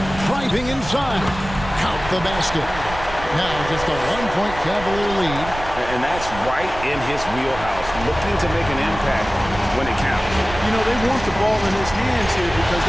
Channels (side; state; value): right; noise; rumble, 11 dB below the sound